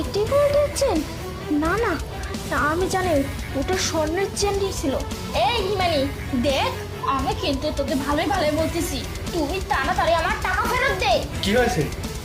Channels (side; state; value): both; identical; correlation 1.00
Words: গোল্ডের চেন? না না না, আমি জানি ওটা স্বর্ণের চেনই ছিল। এই হিমানি দেখ, আমি কিন্তু তোকে ভালোই ভালোই বলতেছি, তুই তাড়াতাড়ি আমার টাকা ফেরত দে। কি হয়েছে?